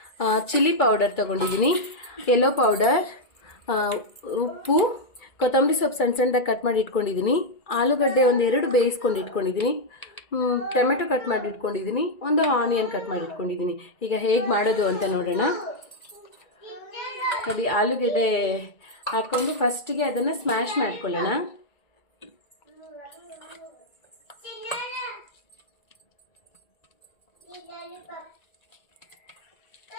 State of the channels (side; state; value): right; late; 2.3 ms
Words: ಚಿಲ್ಲಿ ಪೌಡರ್ ತಗೊಂಡಿದ್ದೀನಿ, ಯೆಲ್ಲೋ ಪೌಡರ್, ಉಪ್ಪು, ಕೊತ್ತಂಬರಿ ಸೊಪ್ಪು ಸಣ್ಣ ಸಣ್ಣದಾಗಿ ಕಟ್ ಮಾಡಿ ಇಟ್ಕೊಂಡಿದ್ದೀನಿ, ಆಲೂಗಡ್ಡೆ ಒಂದು 2 ಬೇಯಿಸ್ಕೊಂಡು ಇಟ್ಕೊಂಡಿದ್ದೀನಿ, ಟೊಮೆಟೊ ಕಟ್ ಮಾಡಿ ಇಟ್ಕೊಂಡಿದ್ದೀನಿ, ಒಂದು ಆನಿಯನ್ ಕಟ್ ಮಾಡಿ ಇಟ್ಕೊಂಡಿದ್ದೀನಿ. ಈಗ ಹೇಗೆ ಮಾಡೋದು ಅಂತ ನೋಡೋಣ. ನೋಡಿ, ಆಲೂಗಡ್ಡೆ ಹಾಕ್ಕೊಂಡು ಫಸ್ಟಿಗೆ ಅದನ್ನು ಸ್ಮ್ಯಾಶ್ ಮಾಡ್ಕೊಳ್ಳೋಣ.